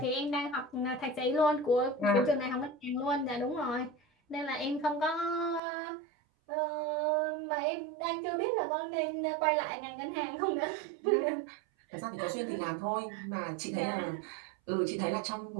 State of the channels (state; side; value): drops out; left; at 5.6 s